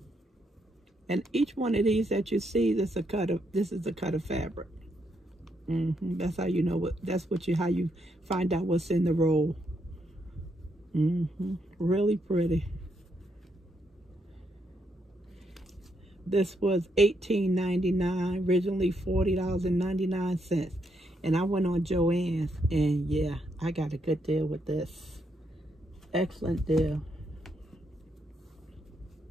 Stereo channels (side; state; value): both; normal; correlation 0.78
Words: And each one of these that you see, this is a cut of fabric. That's how you know how you find out what's in the roll. Really pretty. This was $18.99, originally $40.99. And I went on JoAnn's, and yeah, I got a good deal with this. Excellent deal.